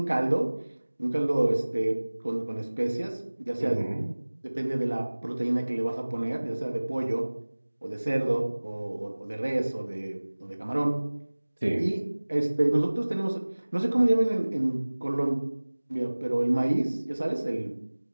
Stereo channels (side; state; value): both; inverted; correlation -1.00